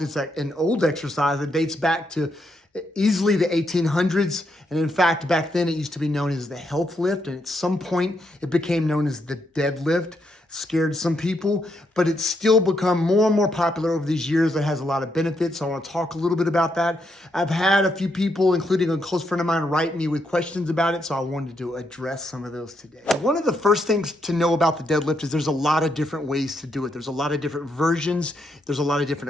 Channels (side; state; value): both; normal; correlation 0.79